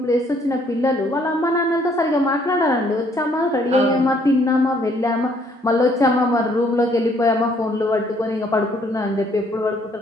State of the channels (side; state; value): both; normal; correlation 0.65